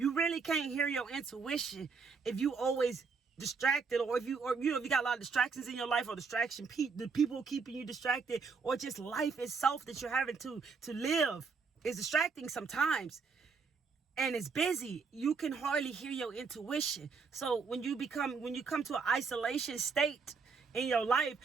really can't hear your intuition if you always distracted, or if you got a lot of distractions in your life, or the people keeping you distracted, or just life itself that you're having to live is distracting sometimes, and it's busy. You can hardly hear your intuition. So when you come to an isolation state in your life,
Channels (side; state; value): left; quieter; 5.1 dB